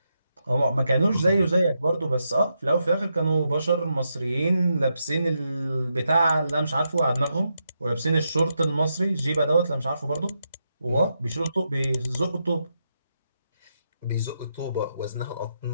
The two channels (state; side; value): inverted; both; correlation -0.83